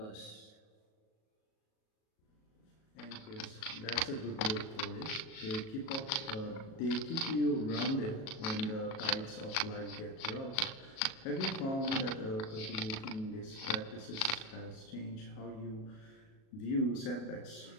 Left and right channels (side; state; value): right; late; 37 ms